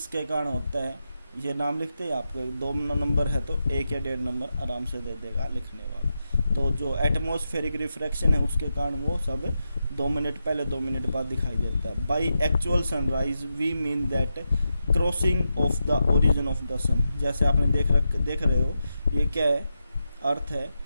कारण होता है, ये नाम लिखते हैं आपको। 2 नंबर है तो 1 या 1.5 नंबर आराम से दे देगा लिखने वाला। तो जो एटमॉस्फेरिक रिफ्रैक्शन है उसके कारण वो सब 2 मिनट पहले 2 मिनट बाद दिखाई देता है। By actual sunrise we mean that crossing of the origin of the sun. जैसे आपने देख रहे हो, ये क्या है? अर्थ है,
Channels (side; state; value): both; inverted; correlation -0.88